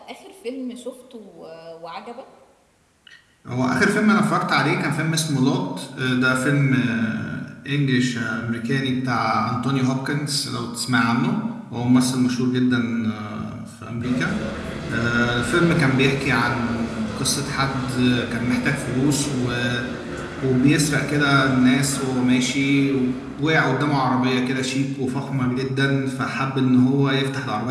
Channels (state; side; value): identical; both; correlation 1.00